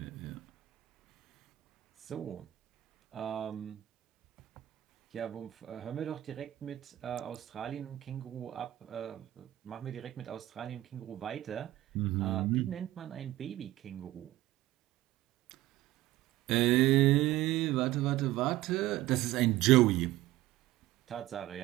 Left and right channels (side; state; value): left; quieter; 15.8 dB